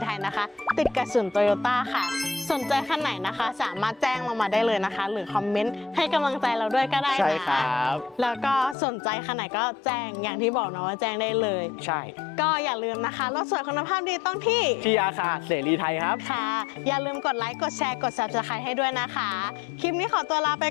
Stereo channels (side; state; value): right; drops out; at 8.8 s